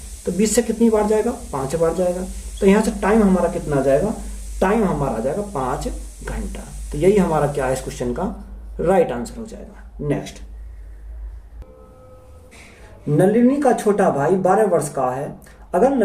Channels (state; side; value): identical; both; correlation 1.00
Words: तो 20 से कितनी बार जाएगा, 5 बार जाएगा। तो यहाँ से टाइम हमारा कितना आ जाएगा, टाइम हमारा आ जाएगा 5 घंटा। तो यही हमारा क्या है, इस क्वेश्चन का राइट आंसर हो जाएगा। नेक्स्ट, नलिनी का छोटा भाई 12 वर्ष का है। अगर